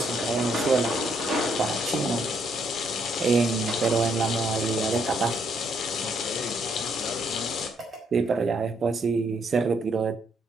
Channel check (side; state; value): both; normal; correlation 0.72